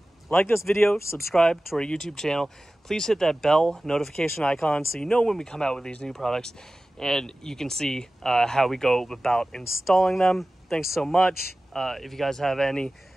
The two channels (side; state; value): both; normal; correlation 0.96